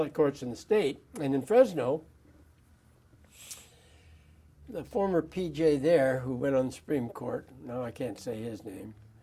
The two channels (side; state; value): both; identical; correlation 1.00